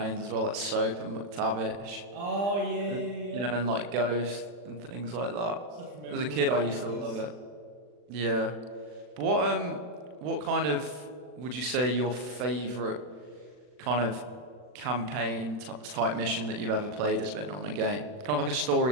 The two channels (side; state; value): left; late; 40 ms